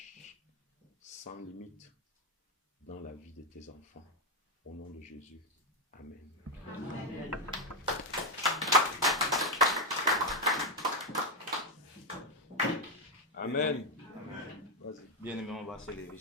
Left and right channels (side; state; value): both; normal; correlation 0.06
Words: sans limite dans la vie de tes enfants. Au nom de Jésus. Amen. Amen. Amen. Amen. Vas-y. Bien-aimés, on va se lever,